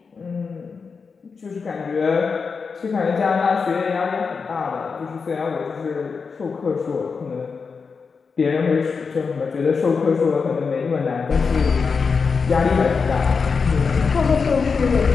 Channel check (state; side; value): quieter; right; 5.2 dB